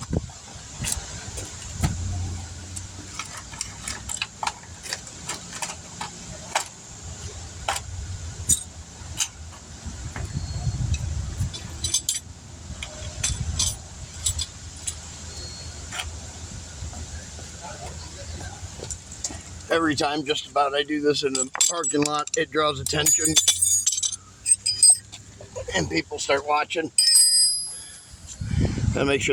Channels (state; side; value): identical; both; correlation 1.00